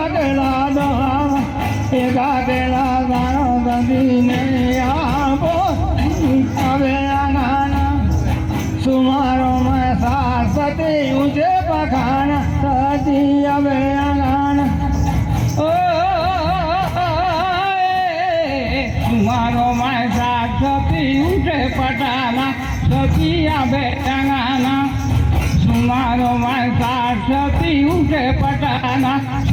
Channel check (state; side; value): identical; both; correlation 1.00